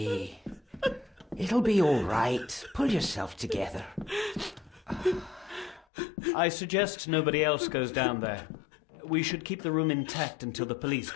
it'll be all right. Pull yourself together. I suggest nobody else goes down there. We should keep the room intact until the police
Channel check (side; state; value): right; drops out; at 5.9 s